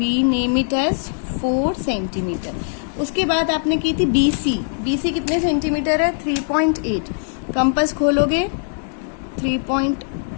name it as 4 centimetre. उसके बाद आपने की थी बी सी, बी सी कितने सेंटीमीटर है, 3.8। कंपास खोलोगे,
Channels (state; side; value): silent; right; 63 dB below the other